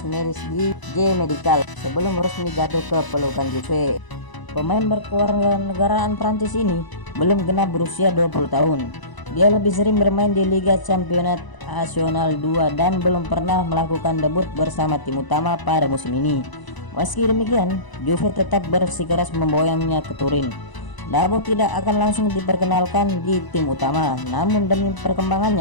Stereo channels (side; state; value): right; late; 1.0 ms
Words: medis di J Medical sebelum resmi jatuh ke pelukan Juve. Pemain berkewarganegaraan Prancis ini belum genap berusia 20 tahun. Dia lebih sering bermain di Liga Championnat Nasional 2 dan belum pernah melakukan debut bersama tim utama pada musim ini. Meski demikian, Juve tetap bersikeras memboyongnya ke Turin. Diabo tidak akan langsung diperkenalkan di tim utama, namun demi